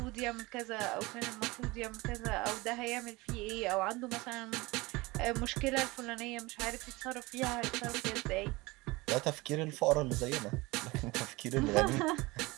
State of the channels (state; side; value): quieter; left; 22.5 dB